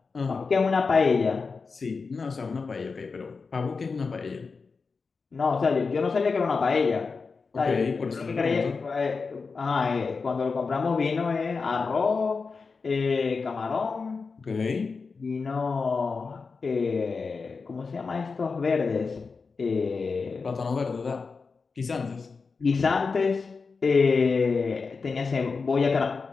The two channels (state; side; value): quieter; right; 4.7 dB